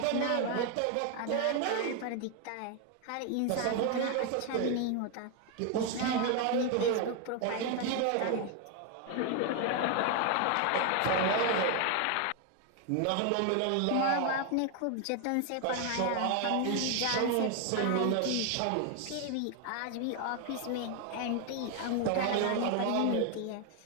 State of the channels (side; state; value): both; different; correlation 0.01